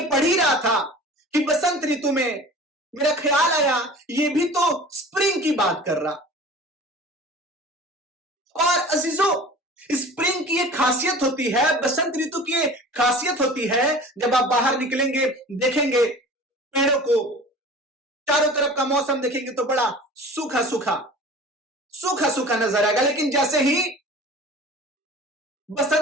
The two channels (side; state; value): both; normal; correlation 0.41